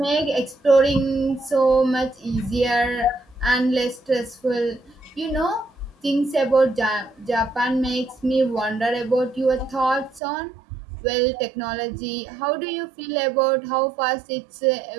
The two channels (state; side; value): drops out; left; at 10.2 s